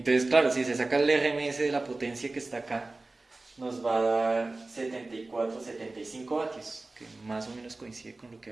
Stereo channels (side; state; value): left; quieter; 3.2 dB